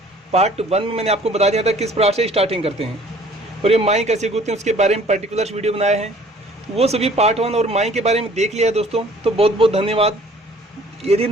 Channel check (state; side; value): normal; both; correlation 0.54